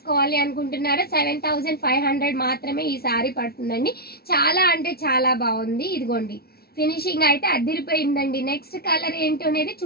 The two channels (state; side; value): late; right; 0.45 ms